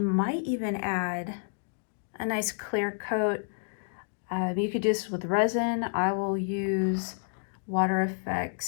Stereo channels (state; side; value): silent; right; digital silence